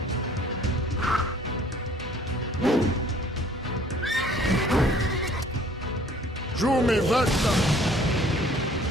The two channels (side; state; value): both; normal; correlation 0.56